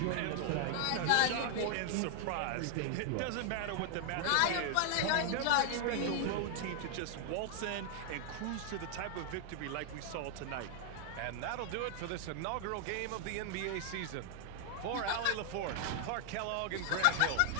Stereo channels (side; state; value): both; different; correlation 0.00